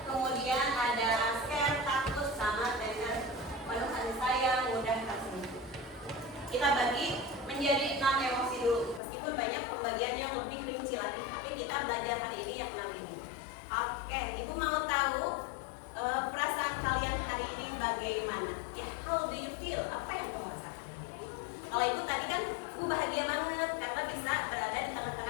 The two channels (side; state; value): right; drops out; at 9.0 s